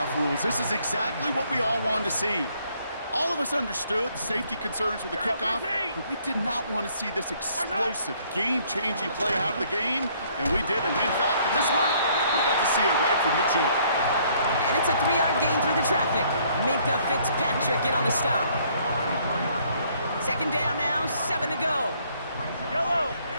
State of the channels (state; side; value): inverted; both; correlation -0.64